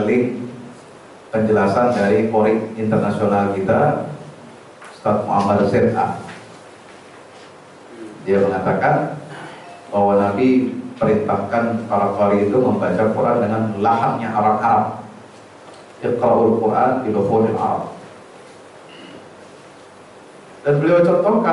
link penjelasan dari Qori internasional kita, Ustaz Muhammad Z.A. Dia mengatakan bahwa Nabi perintahkan para Qori itu membaca Quran dengan lahannya Arab-Arab. Iqra'ul Quran bi lughil Arab. Dan beliau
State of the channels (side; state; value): both; identical; correlation 1.00